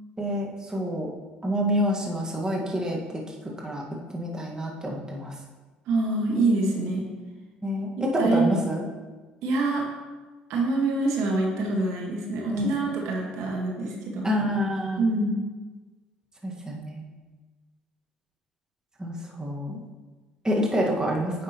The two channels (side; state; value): both; normal; correlation 0.60